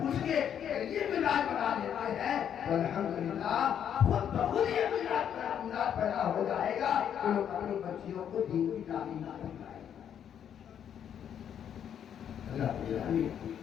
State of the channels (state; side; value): quieter; right; 9.0 dB